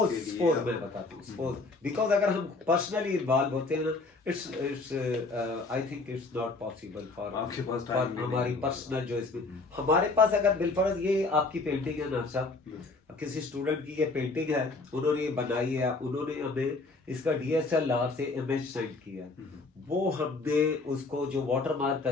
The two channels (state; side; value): quieter; right; 3.6 dB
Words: इसके लिए। मैं बताता हूँ, सपोज बिकॉज अगर हम पर्सनली इन्वॉल्व होते हैं ना, it's I think it's not possible for हमारी पर्सनल जो इसमें हमारे पास अगर बिलफर्ज ये आपकी पेंटिंग है ना साहब, किसी स्टूडेंट की ये पेंटिंग है, उन्होंने ये बनाई है, उन्होंने हमें इसका DSLR से इमेज सेंड किया, वो हमने उसको जो वाटर मार्क